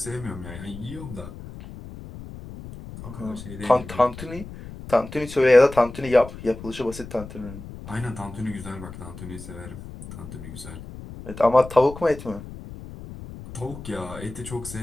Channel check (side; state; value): left; noise; rumble, 13 dB below the sound